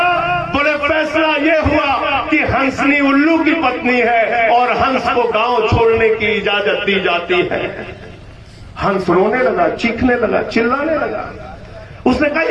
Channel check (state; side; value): identical; both; correlation 1.00